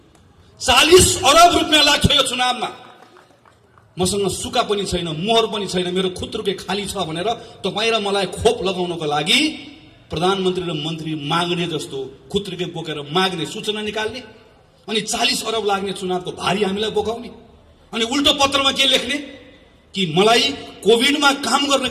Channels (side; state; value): both; identical; correlation 1.00